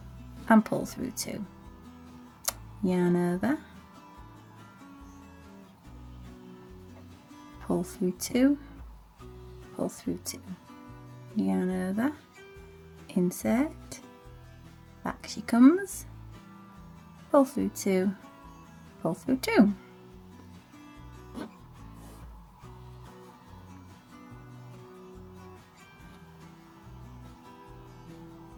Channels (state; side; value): identical; both; correlation 1.00